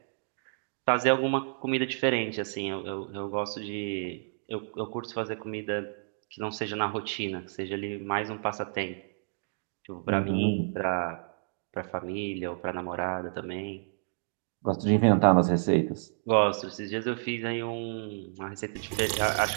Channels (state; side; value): silent; left; digital silence